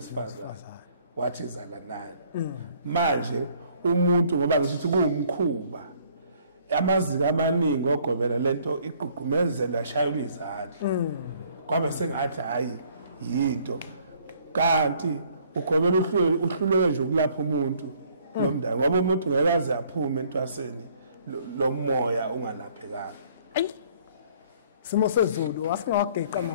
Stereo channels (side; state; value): both; inverted; correlation -0.61